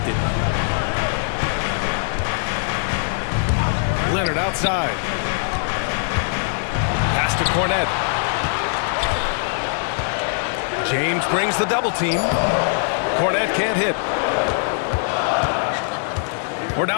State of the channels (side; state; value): right; silent; digital silence